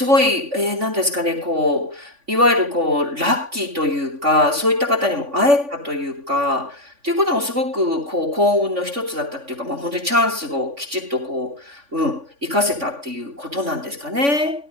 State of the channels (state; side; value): late; left; 3.5 ms